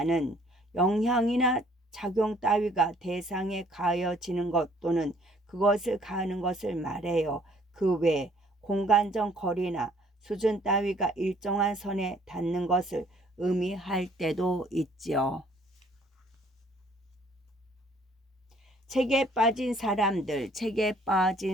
영향이나 작용 따위가 대상에 가해지는 것 또는 그것을 가하는 것을 말해요. 그 외 공간적 거리나 수준 따위가 일정한 선에 닿는 것을 의미할 때도 있지요. 책에 빠진 사람들,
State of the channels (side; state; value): both; normal; correlation 0.60